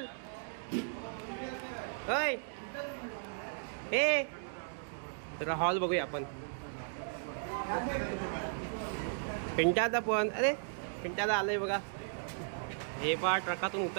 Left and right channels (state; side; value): silent; left; digital silence